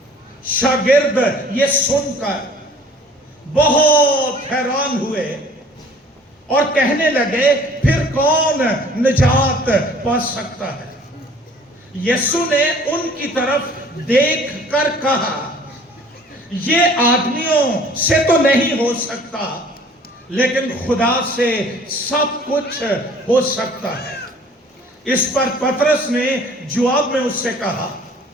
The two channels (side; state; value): both; normal; correlation 0.52